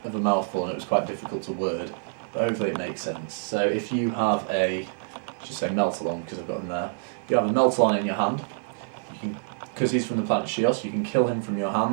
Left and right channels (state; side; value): silent; left; digital silence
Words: of a mouthful and it was quite difficult to word, but hopefully it makes sense. So if you have a, just say Meltalon because I've got him there, if you have a Meltalon in your hand, you can, because he's from the planet Shios, you can kill him from your